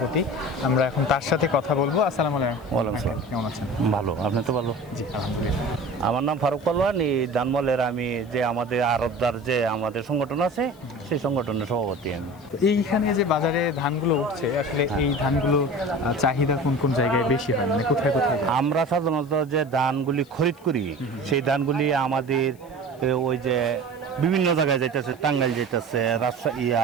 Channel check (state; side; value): noise; left; hiss, 29 dB below the sound